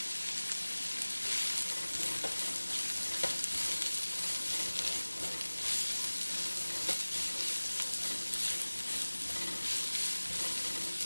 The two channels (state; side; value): inverted; both; correlation -1.00